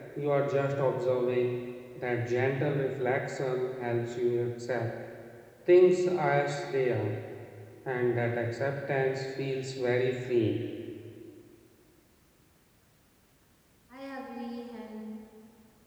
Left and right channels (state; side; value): identical; both; correlation 1.00